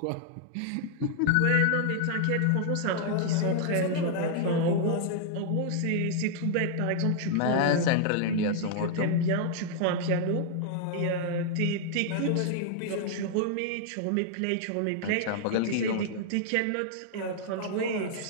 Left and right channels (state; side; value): different; both; correlation -0.01